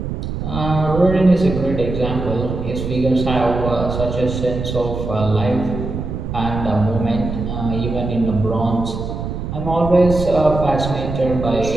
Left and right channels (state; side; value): noise; right; rumble, 5 dB below the sound